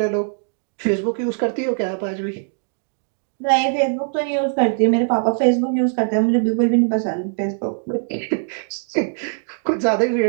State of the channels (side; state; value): left; silent; digital silence